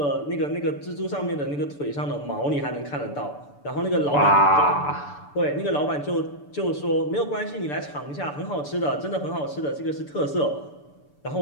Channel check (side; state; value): right; late; 6.9 ms